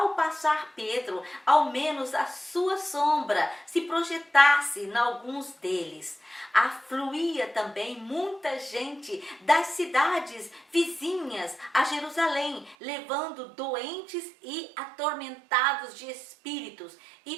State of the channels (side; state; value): left; drops out; at 12.8 s